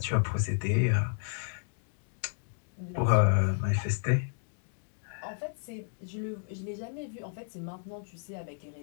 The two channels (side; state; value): right; silent; 56 dB below the other